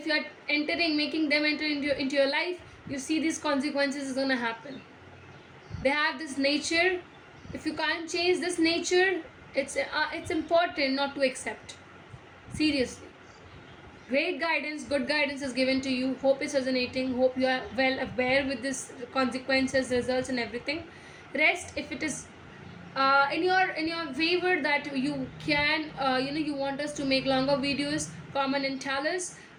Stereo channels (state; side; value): identical; both; correlation 1.00